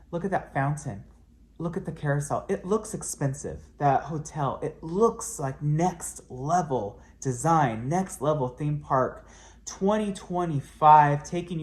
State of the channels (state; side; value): identical; both; correlation 1.00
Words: Look at that fountain. Look at the carousel. It looks expensive. That hotel, it looks like next level design, next level theme park. 2025, taking